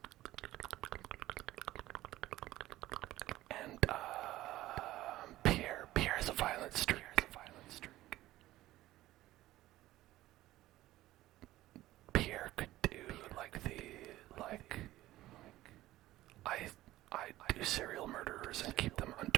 And Pierre has a violent streak. Pierre could do I do serial murderers and keep them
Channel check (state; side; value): quieter; left; 15.8 dB